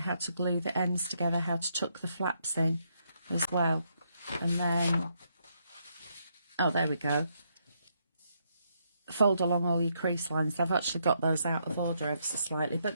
to glue the ends together, how to tuck the flaps in as well. And then, oh, there we go. Fold along all your crease lines. I've actually got those out of order ever so slightly, but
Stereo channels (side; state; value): both; inverted; correlation -0.76